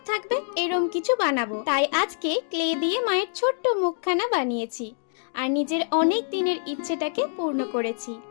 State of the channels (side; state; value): right; silent; digital silence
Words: থাকবে এরম কিছু বানাবো। তাই আজকে ক্লে দিয়ে মায়ের ছোট্ট মুখখানা বানিয়েছি আর নিজের অনেক দিনের ইচ্ছেটাকে পূর্ণ করেছি।